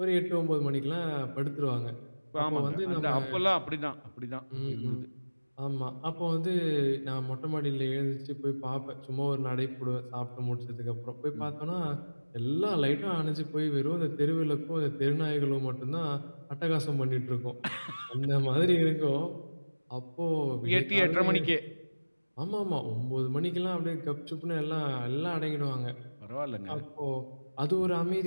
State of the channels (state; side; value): inverted; both; correlation -1.00